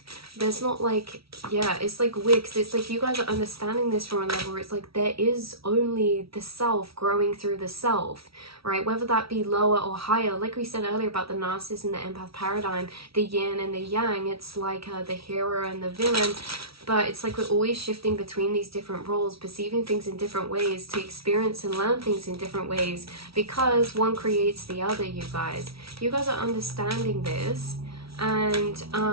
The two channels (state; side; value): late; left; 0.76 ms